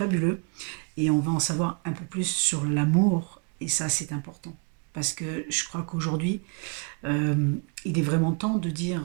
Et on va en savoir un peu plus sur l'amour. Et ça, c'est important. Parce que je crois qu'aujourd'hui, euh, il est vraiment temps de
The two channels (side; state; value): left; quieter; 34.7 dB